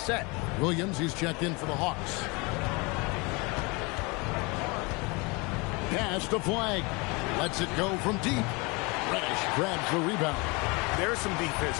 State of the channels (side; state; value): right; quieter; 27.5 dB